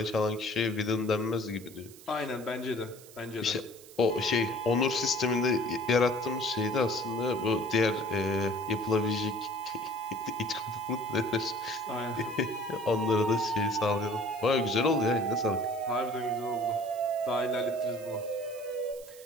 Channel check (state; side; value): noise; right; hiss, 20 dB below the sound